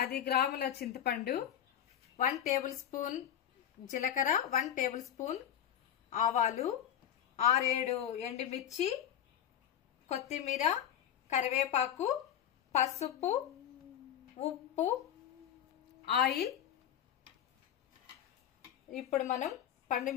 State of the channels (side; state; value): right; quieter; 10.1 dB